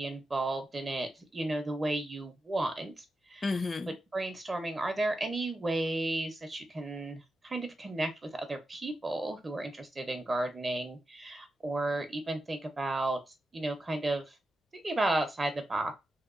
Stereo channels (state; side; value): normal; both; correlation 0.90